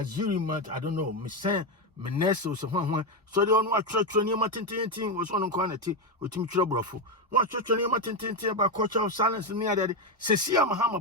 I don't know, me say Meneso so so they on what church near Matin was on quantity with Tim Troubleful. What church near Matin about culture of silence near that. Cecilia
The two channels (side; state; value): both; normal; correlation 0.08